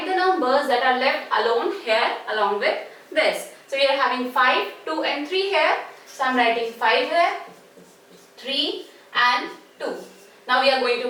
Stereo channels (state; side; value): identical; both; correlation 1.00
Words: the numbers that are left alone here along with this. So we are having 5, 2 and 3 here. So I am writing 5 here, 3 and 2. Now we are going to